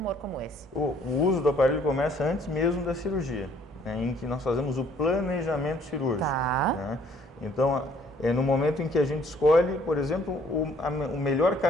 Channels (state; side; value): normal; both; correlation 0.61